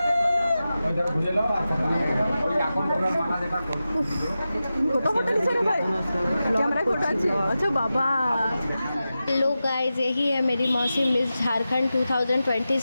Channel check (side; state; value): both; inverted; correlation -0.93